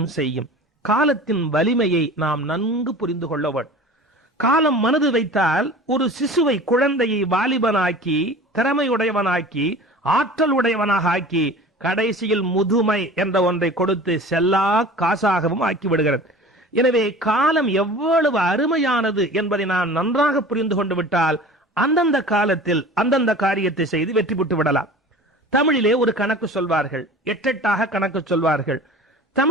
செய்யும். காலத்தின் வலிமையை நாம் நன்கு புரிந்து கொள்ள வேண்டும். காலம் மனது வைத்தால் ஒரு சிசுவை, குழந்தையை வாலிபனாக்கி, திறமையுடையவனாக்கி, ஆற்றல் உடையவனாக ஆக்கி, கடைசியில் முதுமை என்ற ஒன்றை கொடுத்து செல்லா காசாகவும் ஆக்கி விடுகிறது. எனவே காலம் எவ்வளவு அருமையானது என்பதை நான் நன்றாக புரிந்து கொண்டு விட்டால் அந்தந்த காலத்தில் அந்தந்த காரியத்தை செய்து வெற்றி பெற்று விடலாம். தமிழிலே ஒரு கணக்கு சொல்வார்கள், எட்டெட்டாக கணக்கு சொல்வார்கள்.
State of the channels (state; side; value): normal; both; correlation 0.40